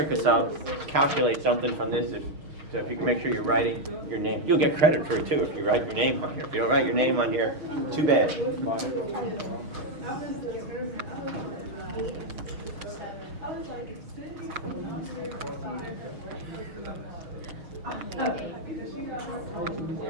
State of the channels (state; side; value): late; left; 6.5 ms